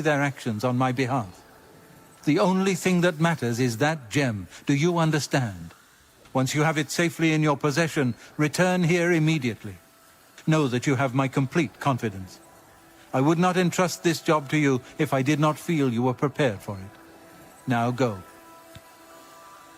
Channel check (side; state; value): both; identical; correlation 1.00